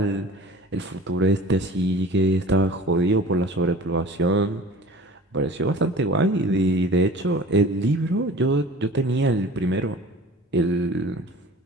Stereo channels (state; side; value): normal; both; correlation 0.42